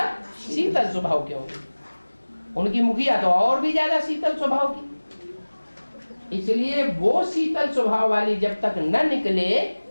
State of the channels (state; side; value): inverted; both; correlation -1.00